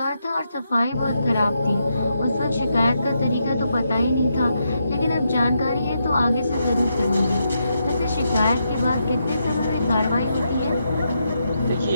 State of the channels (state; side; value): inverted; both; correlation -0.82